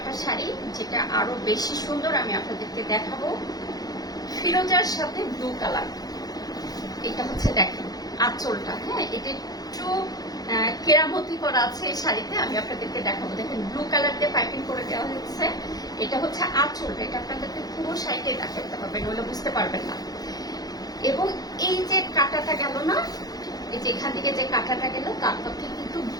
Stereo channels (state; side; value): late; right; 0.19 ms